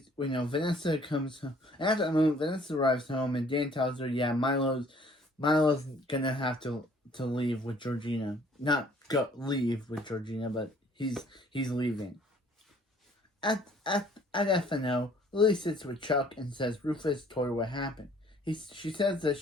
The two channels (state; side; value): normal; both; correlation 0.58